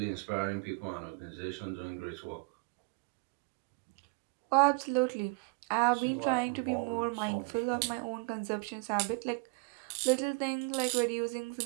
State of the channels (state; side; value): quieter; left; 31.0 dB